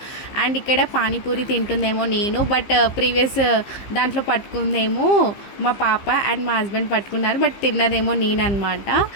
అండ్ ఇక్కడ పానీపూరి తింటుందేమో నేను, బట్ ప్రీవియస్ దాంట్లో పట్టుకుందేమో మా పాప అండ్ మా హస్బెండ్ పట్టుకున్నారు, బట్ తిన్నదేమో నేను అనమాట.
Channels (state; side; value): late; right; 15 ms